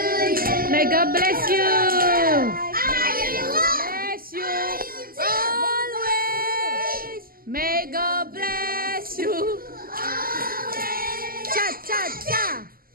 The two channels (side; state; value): left; late; 0.42 ms